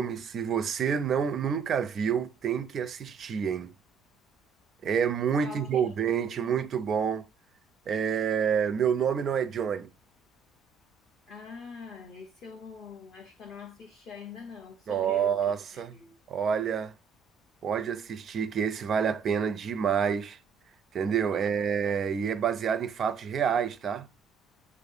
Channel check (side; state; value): left; quieter; 7.0 dB